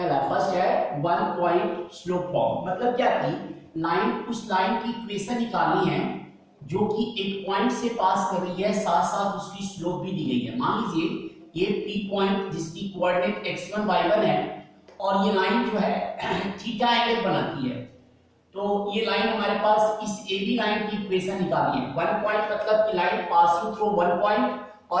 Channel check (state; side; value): identical; both; correlation 1.00